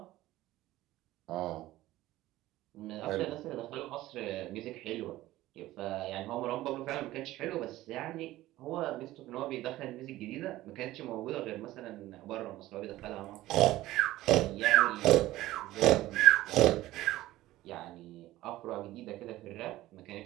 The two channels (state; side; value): quieter; left; 16.2 dB